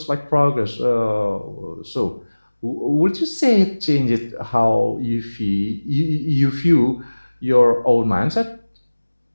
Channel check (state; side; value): inverted; both; correlation -1.00